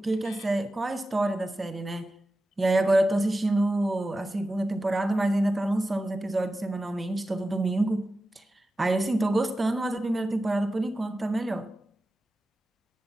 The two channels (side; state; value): both; normal; correlation 0.93